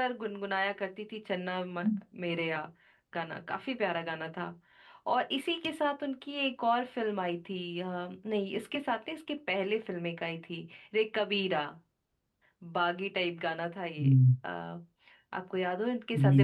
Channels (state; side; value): identical; both; correlation 1.00